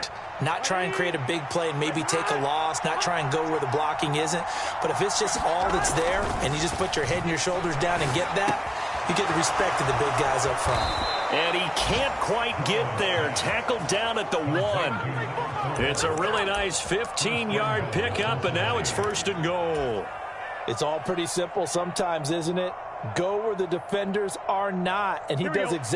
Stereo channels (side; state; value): both; identical; correlation 1.00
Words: Not try and create a big play and maybe take a loss, not try and go where the blocking isn't. But if it's just all that's there and you just put your head and your shoulders down and get that, you get the respect of the big guys up front. And he can't quite get there. Tackled down at the 1. It's a really nice 15-yard pickup, and now it's 1st and goal. It's all pretty simple sometimes, isn't it? Go where the defenders are not, and he does